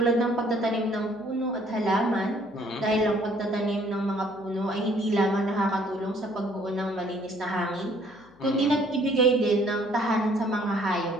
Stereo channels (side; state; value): left; noise; hum, 28 dB below the sound